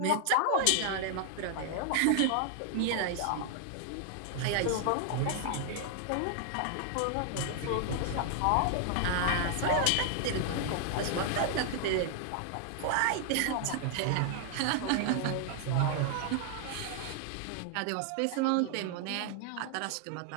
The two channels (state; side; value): different; both; correlation 0.00